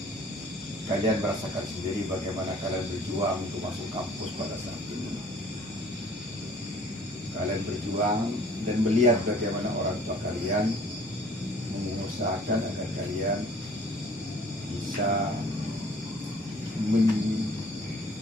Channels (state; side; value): normal; both; correlation 0.52